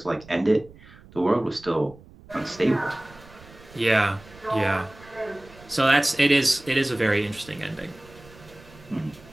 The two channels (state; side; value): noise; right; rumble, 22 dB below the sound